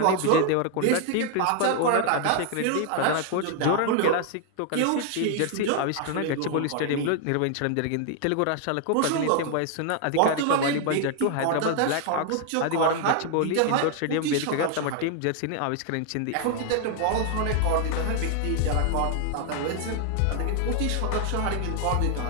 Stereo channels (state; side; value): different; both; correlation 0.00